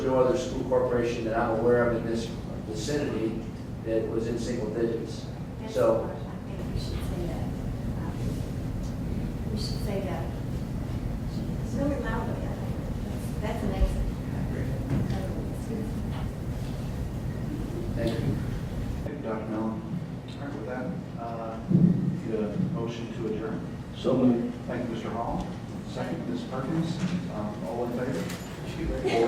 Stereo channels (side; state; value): both; identical; correlation 1.00